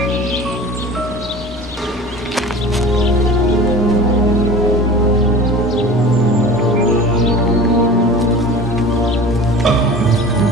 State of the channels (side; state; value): both; normal; correlation 0.38